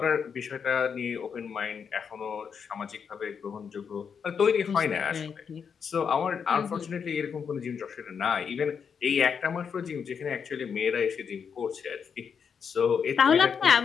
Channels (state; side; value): quieter; right; 6.7 dB